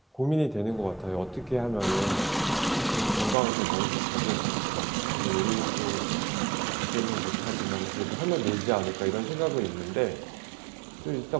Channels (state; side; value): drops out; left; at 3.4 s